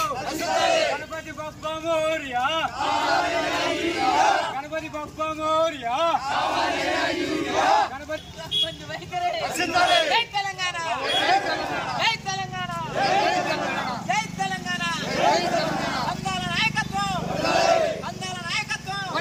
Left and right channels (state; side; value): identical; both; correlation 1.00